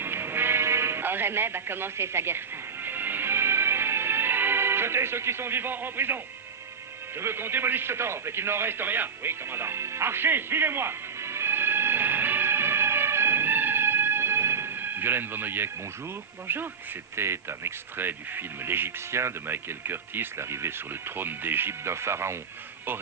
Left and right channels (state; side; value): quieter; left; 6.0 dB